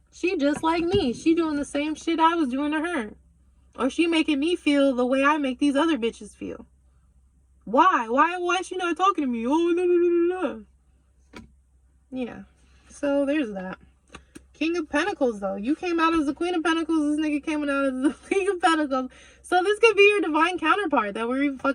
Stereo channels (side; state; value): both; identical; correlation 1.00